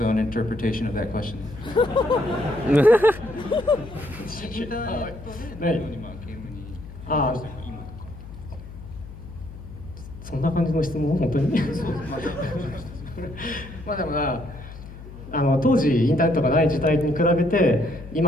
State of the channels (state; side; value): noise; left; hum, 14 dB below the sound